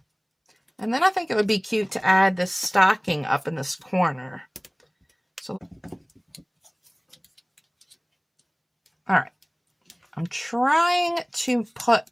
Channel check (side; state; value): both; identical; correlation 1.00